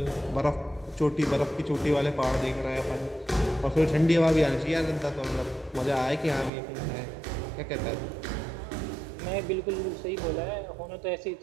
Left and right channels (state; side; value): drops out; left; at 6.5 s